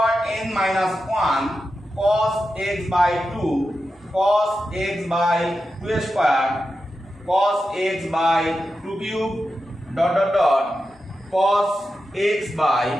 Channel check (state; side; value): normal; both; correlation 0.90